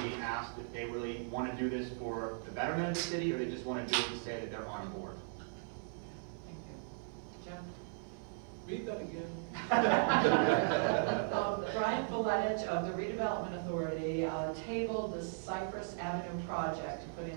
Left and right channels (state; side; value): silent; left; 53 dB below the other